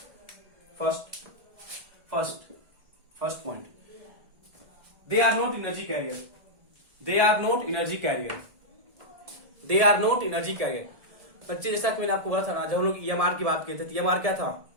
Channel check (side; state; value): left; late; 1.8 ms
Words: First point, they are not energy carrier. They are not energy carrier. They are not energy carrier. बच्चे जैसा कि मैंने आपको बोला था ना, जब हम लोग EMR की बात करते थे, EMR क्या था,